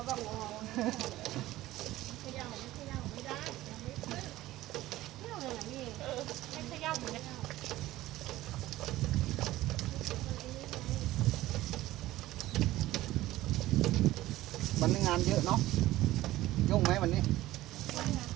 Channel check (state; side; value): quieter; left; 16.2 dB